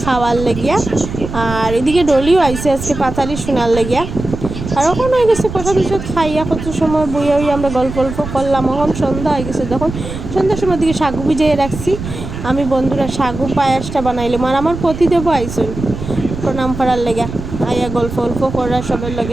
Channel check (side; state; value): right; noise; rumble, 8 dB below the sound